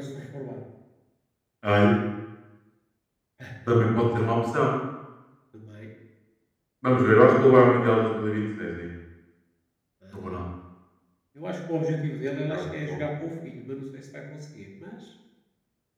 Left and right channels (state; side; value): identical; both; correlation 1.00